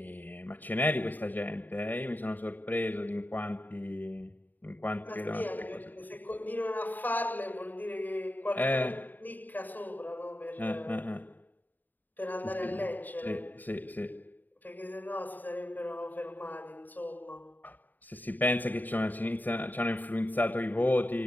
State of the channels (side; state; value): right; late; 0.087 ms